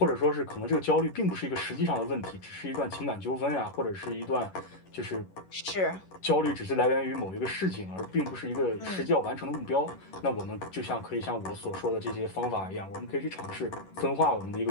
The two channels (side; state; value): right; late; 11 ms